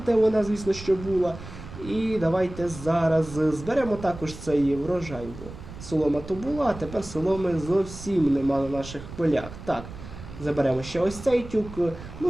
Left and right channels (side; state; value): right; noise; rumble, 13 dB below the sound